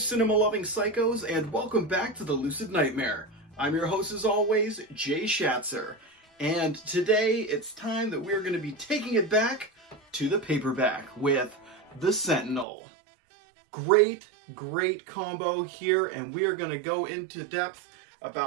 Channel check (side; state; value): left; drops out; at 12.7 s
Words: psychos, and welcome back to the Lucid Nightmare. I'm your host, as always, Jay Schatzer, and today it's time that we're going to be taking it back to the paperback with the Sentinel. Great combo here, and we are going to go into depth